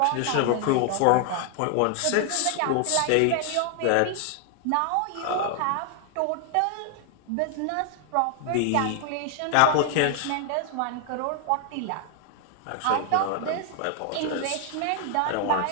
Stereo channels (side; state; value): both; different; correlation 0.00